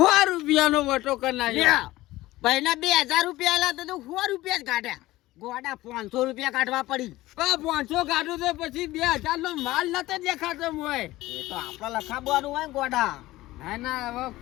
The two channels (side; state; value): right; quieter; 17.5 dB